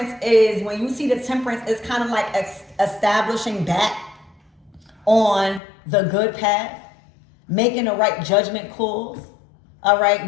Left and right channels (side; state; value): right; drops out; at 5.6 s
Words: is, when you see the temperance, it's kind of like establishing back on the good path, making the right judgment calls, all